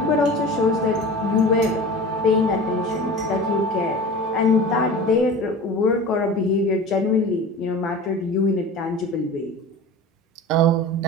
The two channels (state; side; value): normal; both; correlation 0.35